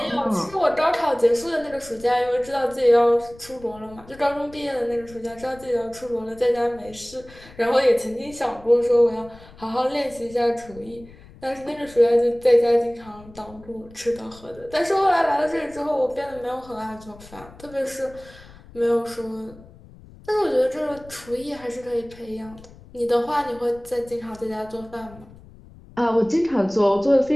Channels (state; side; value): noise; left; rumble, 21 dB below the sound